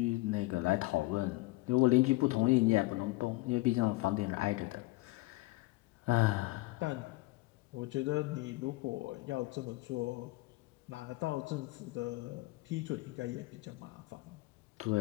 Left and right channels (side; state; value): right; quieter; 21.1 dB